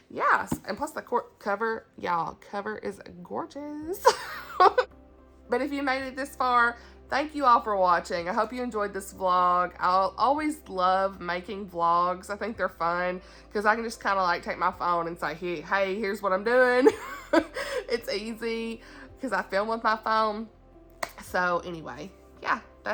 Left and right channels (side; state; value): both; identical; correlation 1.00